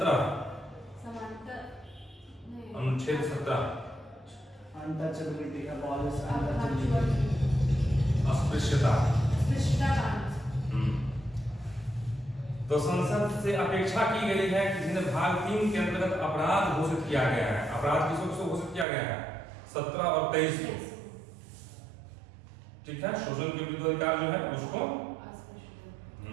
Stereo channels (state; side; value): drops out; left; at 18.9 s